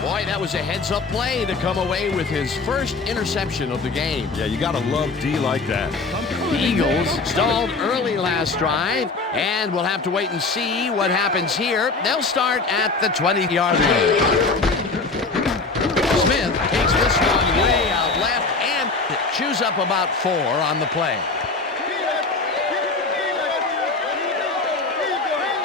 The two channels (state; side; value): quieter; right; 3.9 dB